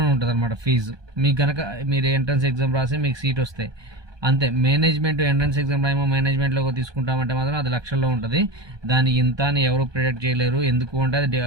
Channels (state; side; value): late; left; 1.2 ms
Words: ఉంటుంది అనమాట ఫీజు. మీకు కనుక మీరు ఎంట్రన్స్ ఎగ్జామ్ రాసి మీకు సీట్ వస్తే అంతే. మేనేజ్మెంట్ ఎంట్రన్స్ ఎగ్జామ్ రాయమో మేనేజ్మెంట్లో తీసుకుంటామంటే మాత్రం అది లక్షల్లో ఉంటుంది. దాని ఇంత అని ఎవరు ప్రిడిక్ట్ చేయలేరు. ఎందుకు అంటే